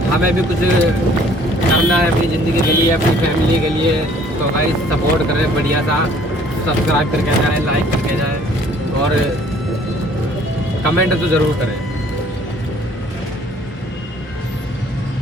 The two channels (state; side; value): normal; both; correlation 0.57